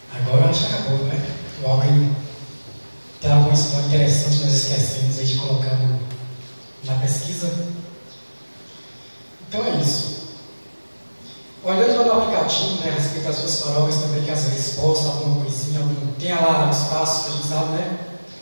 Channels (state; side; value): inverted; both; correlation -1.00